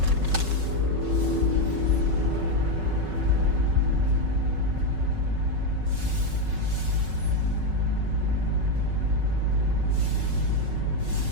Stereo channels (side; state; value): left; late; 5.3 ms